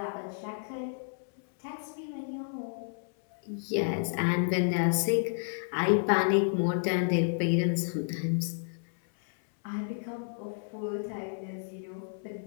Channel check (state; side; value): silent; right; 57 dB below the other